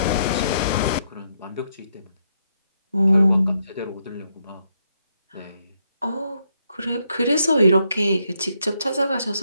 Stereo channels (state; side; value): inverted; both; correlation -0.77